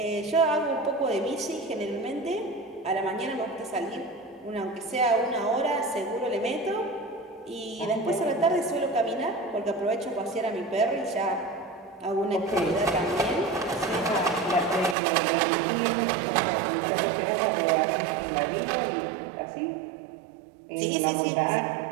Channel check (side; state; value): left; drops out; at 15.0 s